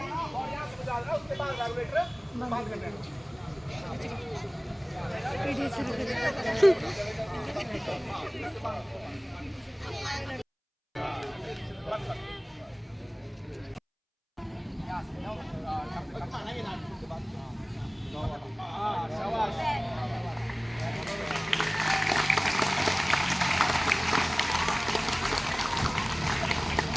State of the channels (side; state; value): both; identical; correlation 1.00